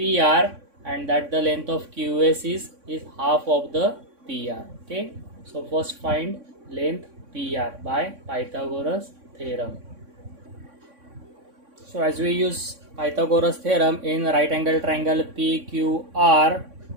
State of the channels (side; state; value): left; late; 3.6 ms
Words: and that the length of QS is half of the PR. Okay, so first find length PR by Pythagoras theorem. So as we use Pythagoras theorem in right angle triangle PQR,